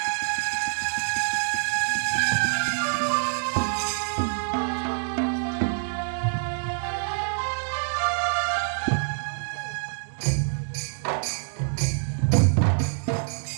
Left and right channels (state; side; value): silent; left; digital silence